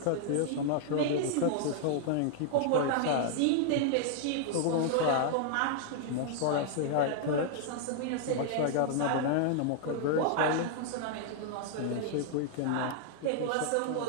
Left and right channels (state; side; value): different; both; correlation -0.01